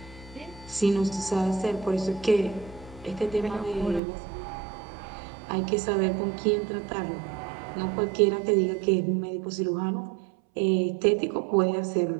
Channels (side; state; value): left; drops out; at 4.0 s